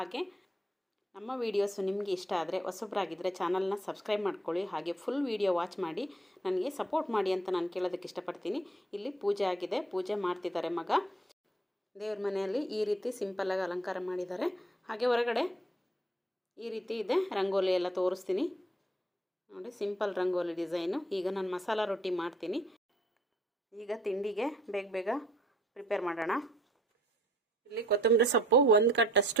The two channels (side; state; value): both; normal; correlation 0.61